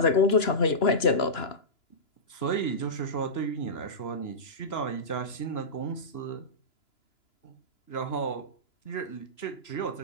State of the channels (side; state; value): right; late; 2.9 ms